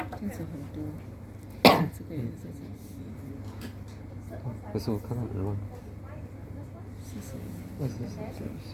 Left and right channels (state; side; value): identical; both; correlation 1.00